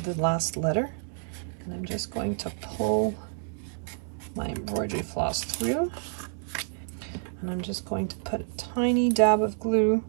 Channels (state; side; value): silent; left; digital silence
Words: the last letter, and I'm just going to pull my embroidery floss through, and I'm just going to put a tiny dab of glue